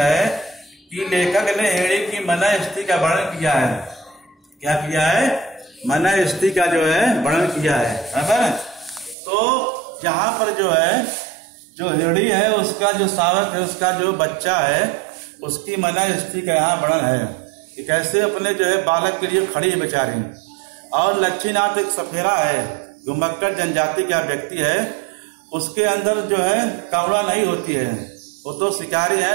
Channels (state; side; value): drops out; left; at 9.2 s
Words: कि लेखक ने हिरणी की मन स्थिति का वर्णन किया है। क्या किया है? मन स्थिति का जो है वर्णन किया है। बराबर। तो यहाँ पर जो है जो हिरणी है उसका जो सावक है, उसका जो बच्चा है, उसकी मन स्थिति का यहाँ वर्णन है कि कैसे अपने जो है बालक के लिए खड़ी है बेचारी। और लक्ष्मीनाथ एक सफेरा है, घुमक्कड़ जनजाति का व्यक्ति है। उसके अंदर जो है करुणा नहीं होती है। वो तो शिकारी